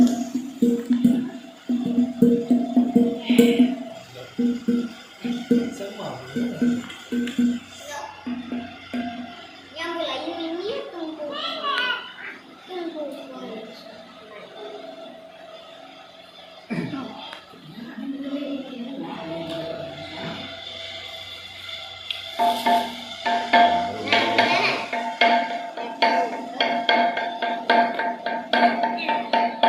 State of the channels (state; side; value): identical; both; correlation 1.00